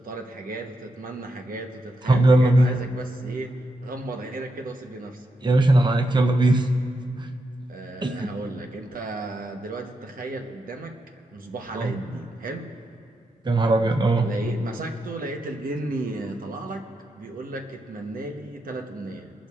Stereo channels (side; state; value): both; normal; correlation 0.84